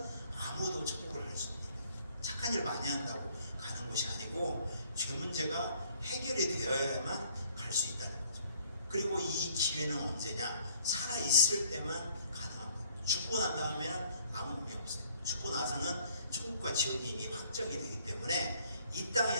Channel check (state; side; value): inverted; both; correlation -0.61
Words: 아무도 천국을 할 수 없는 거예요. 착한 일 많이 한다고 가는 곳이 아니고 죄 문제가 해결이 되어야만 갈 수 있다는 거죠. 그리고 이 기회는 언제냐? 살아있을 때만 가능한 거예요. 죽고 난 다음에는 아무 의미 없어요. 죽고 나서는 천국과 지옥이 이미 확정이 되기 때문에 이 땅에